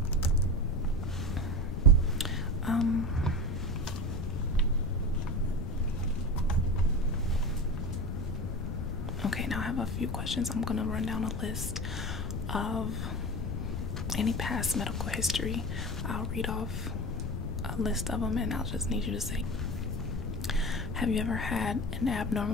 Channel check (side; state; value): left; noise; rumble, 3 dB below the sound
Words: Okay, now I have a few questions. I'm gonna run down a list of any past medical history. I'll read off a list of them and I'll just need you to say, have you ever had an